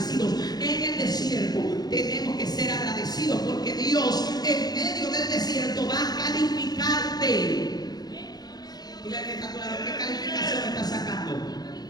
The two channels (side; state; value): right; late; 0.19 ms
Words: En el desierto tenemos que ser agradecidos porque Dios en medio del desierto va a calificarte. Dile al que está claro, ¿qué calificación está sacando?